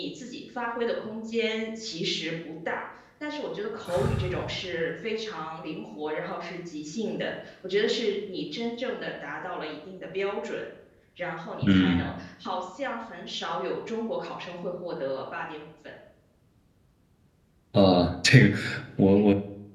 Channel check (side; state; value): both; identical; correlation 1.00